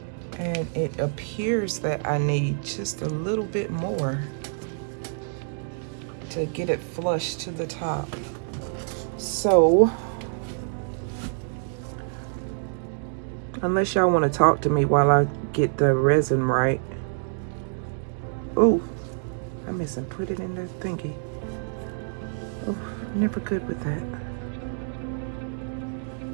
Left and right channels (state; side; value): silent; left; digital silence